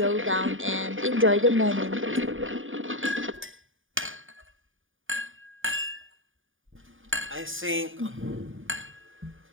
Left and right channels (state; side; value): late; left; 0.58 ms